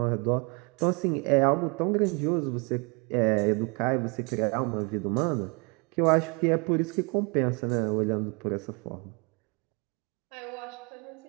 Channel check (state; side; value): quieter; left; 31.8 dB